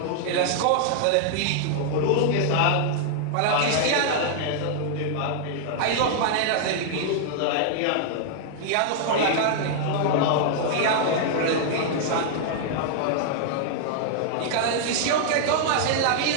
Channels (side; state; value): both; different; correlation -0.01